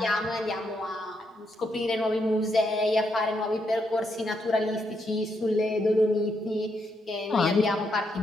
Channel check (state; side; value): normal; both; correlation 0.79